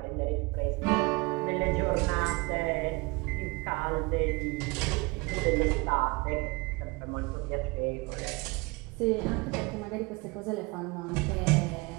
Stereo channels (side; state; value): left; quieter; 26.1 dB